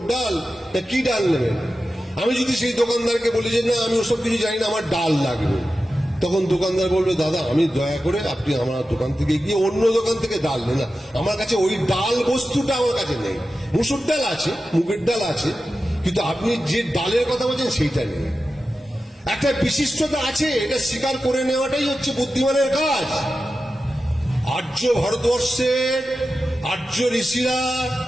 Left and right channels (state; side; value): normal; both; correlation 0.93